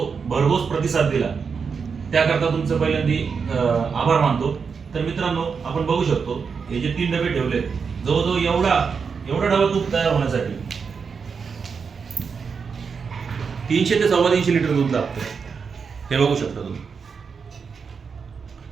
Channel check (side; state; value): left; quieter; 5.7 dB